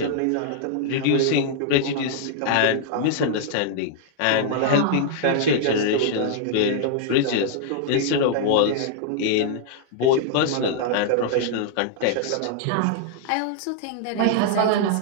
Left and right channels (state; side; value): different; both; correlation -0.01